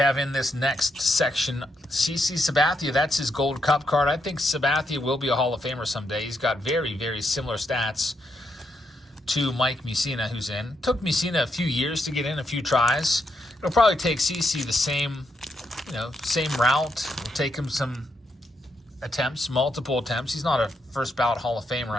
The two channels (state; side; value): normal; both; correlation 0.80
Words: in this next section. CC Sabathia, that's his Gold Cup card. I think Sabathia will be a Hall of Famer someday. He's got very, very similar stats to Mike Mussina, who's in. Took Mussina a few years to get in, a few tries. It'll probably take CC the same route. It'll take him some attempts, multiple attempts. He's not a first ballot Hall of Famer,